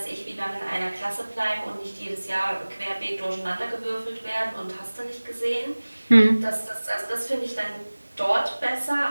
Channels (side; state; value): both; inverted; correlation -1.00